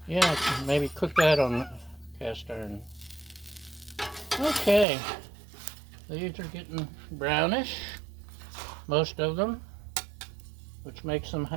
Yeah, maybe cook that on cast iron. Okay, these are getting brownish, most of them, which makes them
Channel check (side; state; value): left; drops out; at 4.9 s